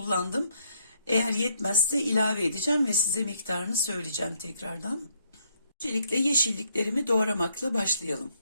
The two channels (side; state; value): both; inverted; correlation -0.72